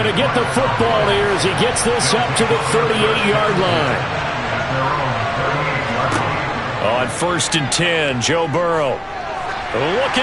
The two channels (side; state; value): both; identical; correlation 1.00